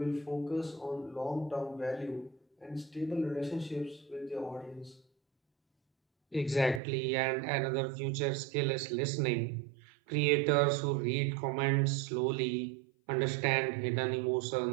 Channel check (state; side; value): drops out; left; at 6.8 s